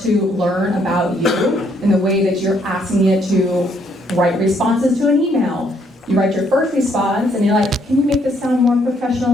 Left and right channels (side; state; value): both; normal; correlation 0.70